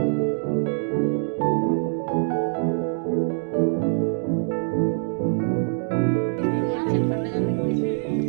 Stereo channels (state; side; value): silent; left; digital silence